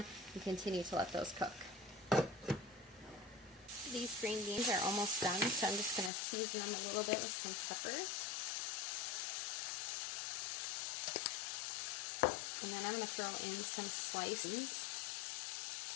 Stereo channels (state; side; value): drops out; right; at 6.1 s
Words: and continue to let those cook. These green beans are almost done, so I'm just going to season them a little bit with some pepper. And then I'm going to throw in some slices.